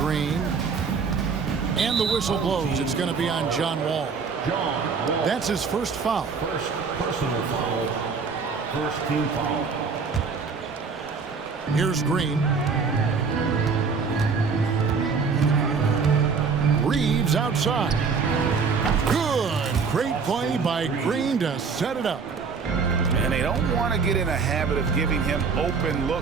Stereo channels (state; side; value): quieter; left; 5.3 dB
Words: And the whistle blows. It's going to be on John Wall. That's his first foul. First personal foul. First team foul. Here's Green. Reeves outside. Good. Great play by Green to set it up. And they don't want to get in a habit of giving him open